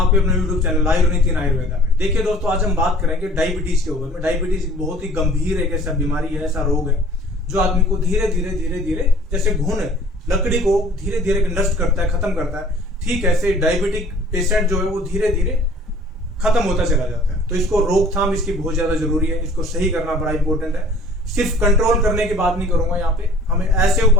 आपके अपने YouTube चैनल आयुर्वेद आयुर्वेदा में। देखिए दोस्तों, आज हम बात करेंगे डायबिटीज के ऊपर में। डायबिटीज बहुत ही गंभीर एक ऐसा बीमारी है, ऐसा रोग है जो आदमी को धीरे धीरे जैसे घुन लकड़ी को धीरे धीरे नष्ट करता है, खत्म करता है, ठीक ऐसे डायबिटिक पेशेंट जो है वो धीरे धीरे खत्म होता चला जाता है। तो इसको रोकथाम इसकी बहुत ज्यादा जरूरी है, इसको सही करना बड़ा इंपॉर्टेंट है। सिर्फ कंट्रोल करने की बात नहीं करूंगा, यहाँ पे हमें ऐसे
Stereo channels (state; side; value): normal; both; correlation 0.50